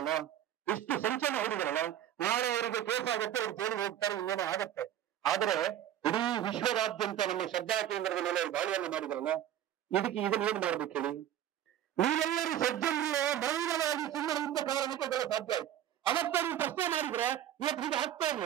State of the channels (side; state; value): left; quieter; 11.2 dB